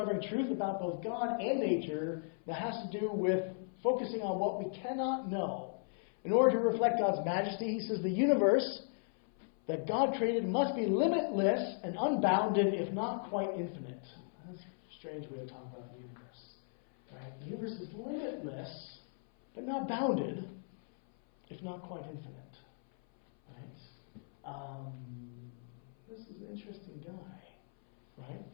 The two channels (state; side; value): silent; right; 54 dB below the other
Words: truth about both God and nature that has to do with focusing on what we cannot know. In order to reflect God's majesty, he says the universe that God created must be limitless and unbounded, if not quite infinite. That's a strange way of talking about the universe. Right? The universe is limitless, but not bounded, if not quite infinite. Right? This is an interesting guy.